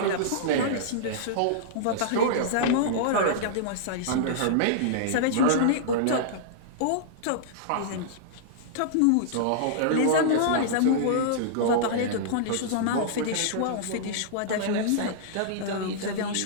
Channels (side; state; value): both; different; correlation -0.02